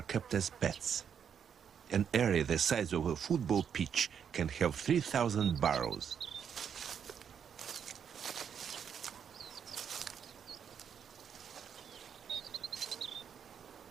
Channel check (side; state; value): left; quieter; 7.8 dB